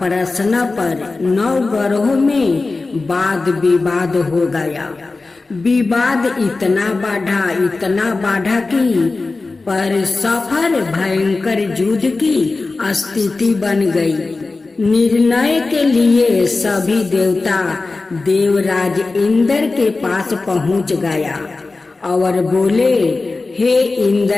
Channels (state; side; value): quieter; right; 3.6 dB